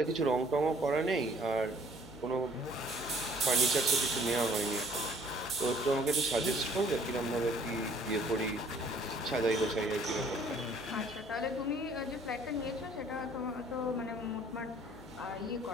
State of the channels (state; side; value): noise; left; hum, 21 dB below the sound